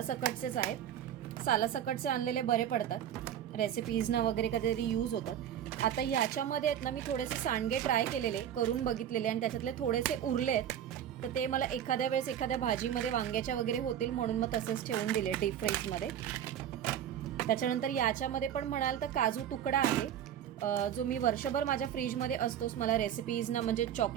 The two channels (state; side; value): quieter; left; 10.0 dB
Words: आहेत. सालासकटचे आणलेले बरे पडतात, रेसिपीजना वगैरे कधीतरी यूज होतं. आता याच्यामध्ये आहेत ना मी थोडेसे सांडगे ट्राय केलेले, करून बघितलेले, आणि त्याच्यातले थोडेसे उरले आहेत, तर ते मला एखाद्या वेळेस एखाद्या भाजीमध्ये वांग्याच्या वगैरे होतील म्हणून मग तसेच ठेवून दिले डीप फ्रीजमध्ये. त्याच्यानंतर याच्यामध्ये पण म्हणाल तर काजू तुकडा आहे, जो मी वर्षभर माझ्या फ्रीजमध्ये असतोच, मला रेसिपीजना म्हणजे